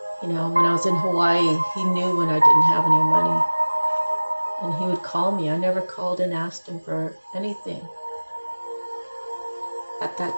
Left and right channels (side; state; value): both; inverted; correlation -1.00